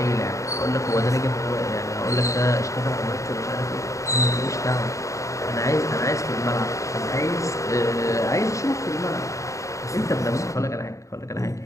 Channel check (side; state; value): right; late; 0.15 ms